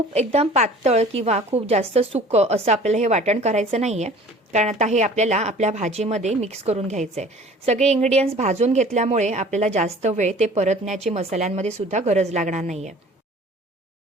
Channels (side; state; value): both; normal; correlation 0.47